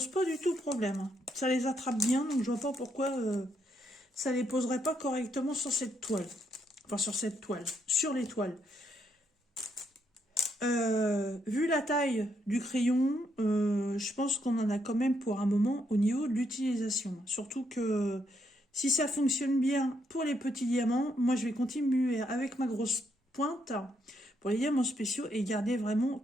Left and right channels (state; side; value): normal; both; correlation 0.76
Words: pas du tout problème. Hein. Ça les attrape bien, donc je vois pas pourquoi ça les poserait pas correctement sur cette toile. Enfin, sur cette toile, sur les toiles. Vu la taille du crayon, je pense qu'on en a quand même pour un moment au niveau de l'utilisation. Surtout que si ça fonctionne bien pour les petits diamants, moi je vais continuer avec ma grosse pointe pour les diamants spéciaux et garder vraiment